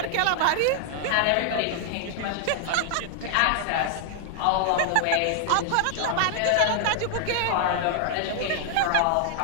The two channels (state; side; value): different; both; correlation 0.00